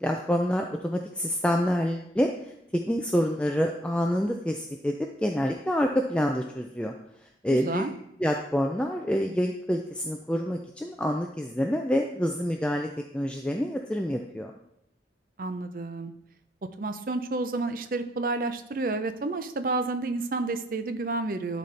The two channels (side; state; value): both; normal; correlation 0.76